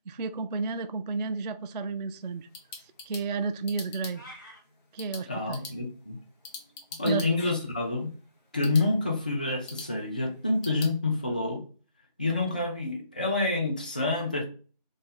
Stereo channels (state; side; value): inverted; both; correlation -0.67